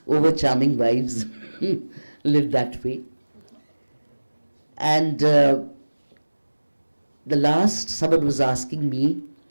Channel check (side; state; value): both; inverted; correlation -1.00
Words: over-charming wives, live that way. And the last, someone was asking me